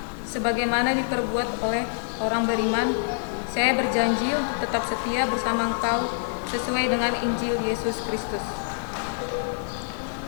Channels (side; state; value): right; silent; digital silence